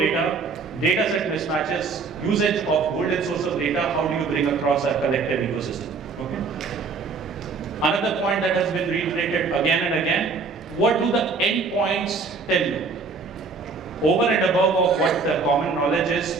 data set mismatches, usage of golden source of data, how do you bring across our collective ecosystem? Okay. Another point that has been reiterated again and again, what do the endpoints tell you? Over and above of what the common knowledge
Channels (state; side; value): quieter; left; 4.6 dB